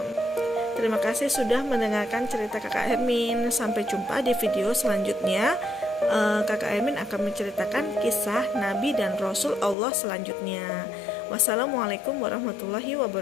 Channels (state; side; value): drops out; right; at 9.8 s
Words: Terima kasih sudah mendengarkan cerita Kakak Hermin. Sampai jumpa di video selanjutnya. Kakak Hermin akan menceritakan kisah Nabi dan Rasul Allah selanjutnya. Wassalamualaikum warahmatullahi